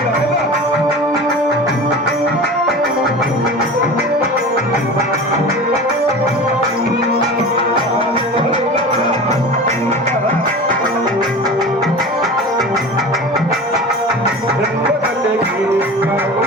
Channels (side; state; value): both; normal; correlation 0.34